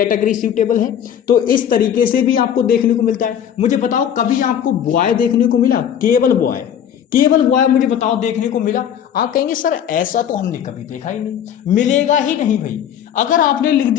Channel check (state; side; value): quieter; right; 9.3 dB